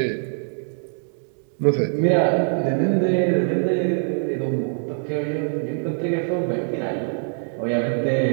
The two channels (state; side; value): silent; left; digital silence